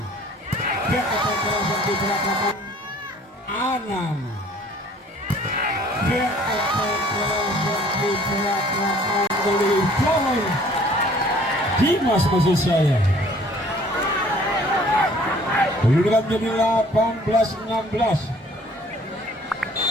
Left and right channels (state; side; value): normal; both; correlation 0.55